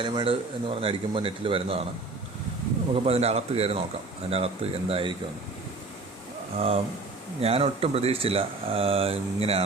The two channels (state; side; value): quieter; left; 3.5 dB